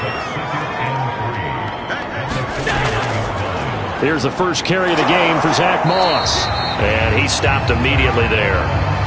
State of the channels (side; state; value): both; identical; correlation 1.00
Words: Here's the first carry of the game for Zach Moss. And he stopped immediately there.